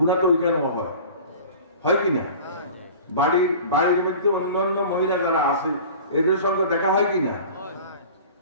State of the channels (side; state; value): both; inverted; correlation -0.41